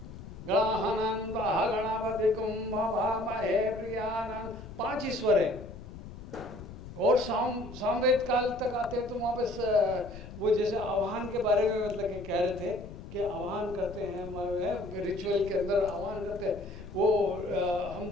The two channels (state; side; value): noise; left; rumble, 13 dB below the sound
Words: गणानां गणावधिकुं भवामहे प्रियानां, 5 ही स्वर है। और सामवेद काल तक आते हैं तो वहाँ पे वो जैसे आह्वान के बारे में मतलब कि कह रहे थे कि आह्वान करते हैं हमारे रिचुअल के अंदर, आह्वान करते हैं वो हम